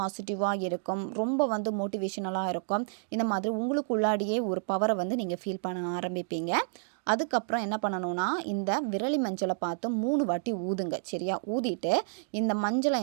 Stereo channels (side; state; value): left; silent; digital silence